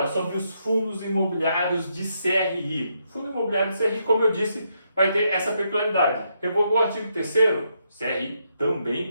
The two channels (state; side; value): inverted; both; correlation -0.78